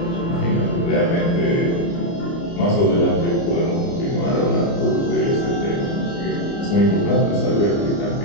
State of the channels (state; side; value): late; right; 29 ms